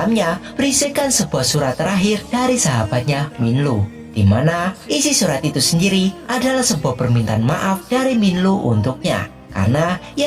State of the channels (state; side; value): identical; both; correlation 1.00